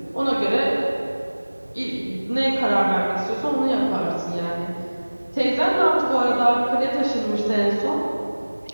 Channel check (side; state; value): both; inverted; correlation -1.00